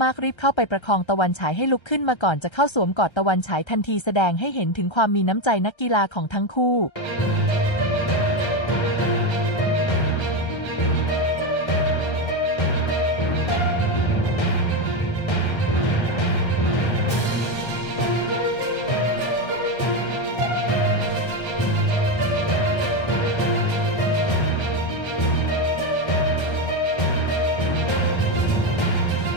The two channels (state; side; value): late; right; 1.3 ms